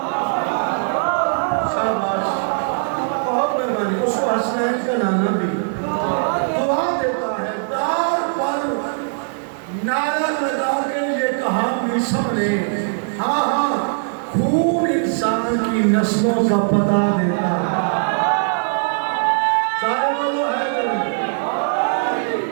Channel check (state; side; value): silent; left; digital silence